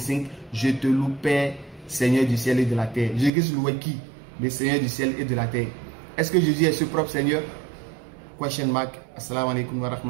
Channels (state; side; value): drops out; left; at 3.3 s